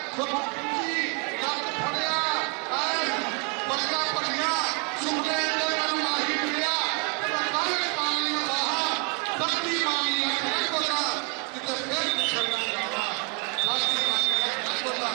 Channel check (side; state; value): left; quieter; 35.9 dB